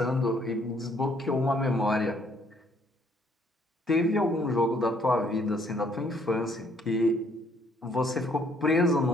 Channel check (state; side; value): normal; both; correlation 0.65